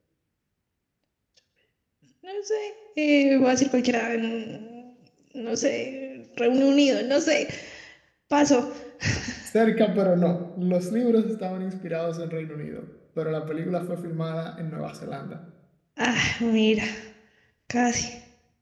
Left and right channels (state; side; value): identical; both; correlation 1.00